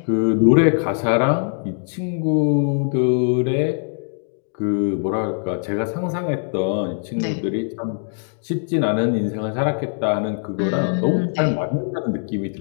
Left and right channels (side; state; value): right; silent; digital silence